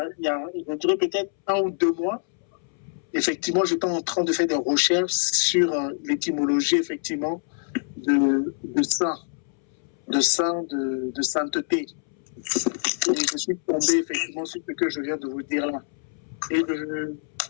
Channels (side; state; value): right; silent; 62 dB below the other